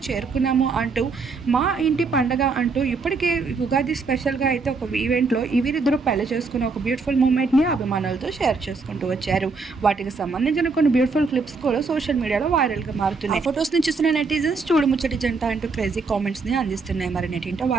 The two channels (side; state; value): left; quieter; 4.4 dB